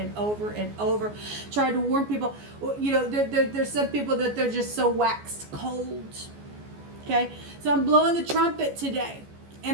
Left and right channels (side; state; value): left; late; 14 ms